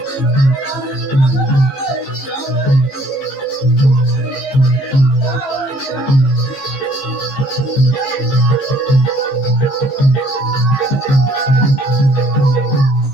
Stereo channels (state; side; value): late; right; 14 ms